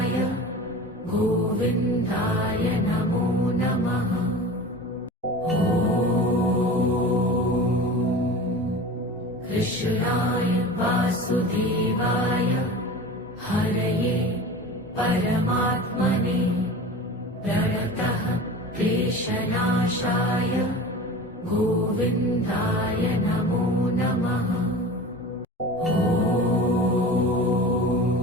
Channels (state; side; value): normal; both; correlation 0.35